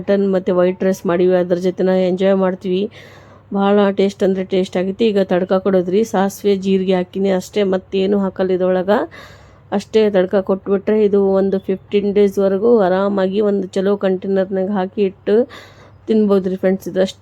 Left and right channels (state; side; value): identical; both; correlation 1.00